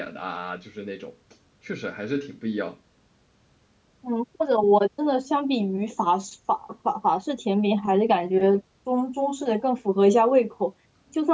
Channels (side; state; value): both; identical; correlation 1.00